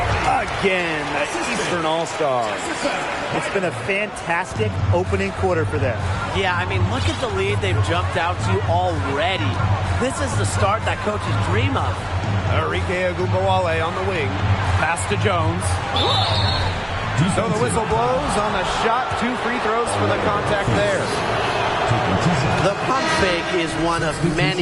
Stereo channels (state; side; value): identical; both; correlation 1.00